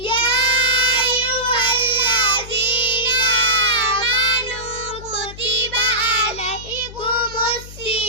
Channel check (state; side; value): noise; left; hum, 15 dB below the sound